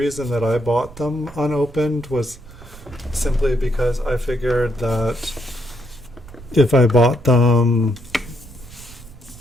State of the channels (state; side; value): noise; right; rumble, 18 dB below the sound